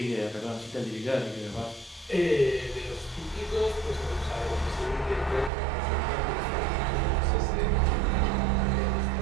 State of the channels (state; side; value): drops out; left; at 5.5 s